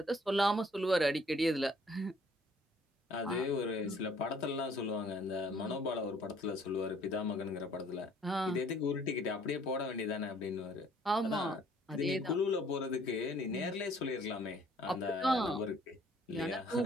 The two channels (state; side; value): normal; both; correlation 0.59